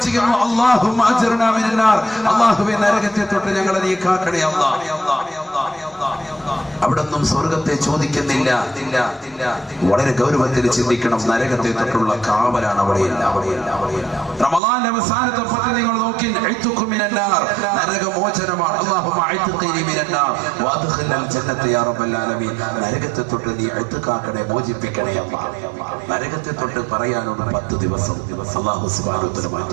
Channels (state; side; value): drops out; left; at 14.6 s